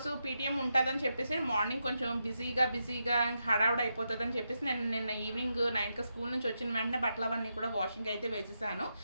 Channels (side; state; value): both; inverted; correlation -0.85